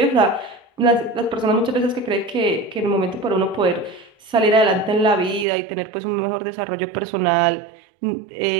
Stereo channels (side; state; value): left; drops out; at 5.5 s